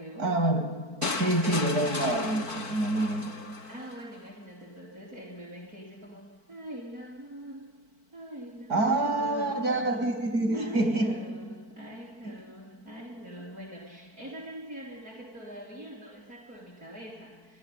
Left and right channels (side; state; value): left; late; 4.5 ms